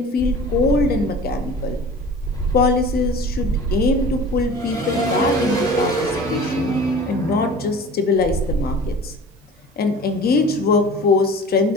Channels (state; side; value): normal; both; correlation 0.41